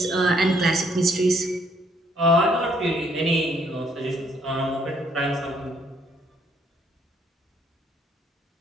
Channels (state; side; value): normal; both; correlation 0.67